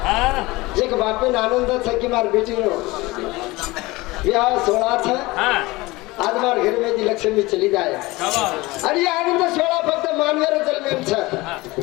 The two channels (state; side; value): quieter; right; 21.3 dB